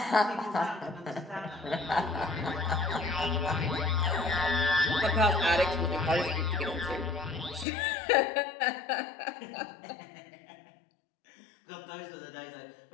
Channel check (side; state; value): right; drops out; at 7.7 s